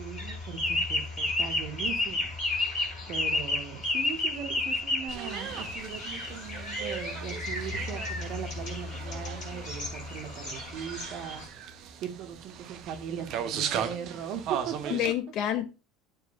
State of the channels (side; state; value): both; normal; correlation 0.51